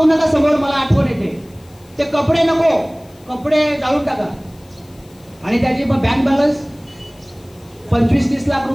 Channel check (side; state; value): left; noise; hiss, 29 dB below the sound